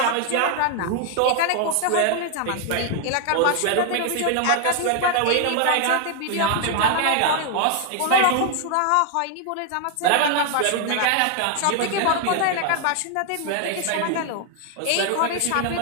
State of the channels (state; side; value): different; both; correlation 0.01